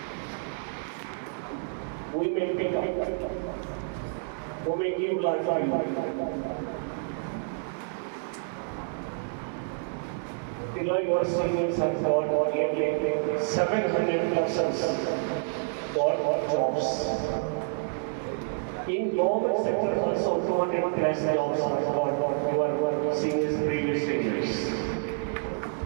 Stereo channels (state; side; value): silent; left; digital silence